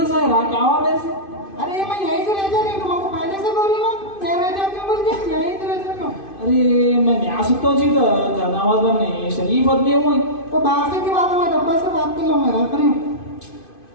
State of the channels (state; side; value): late; right; 2.5 ms